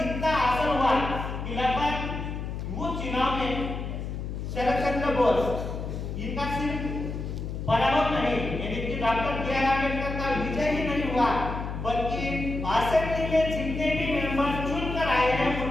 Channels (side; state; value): left; noise; hum, 5 dB below the sound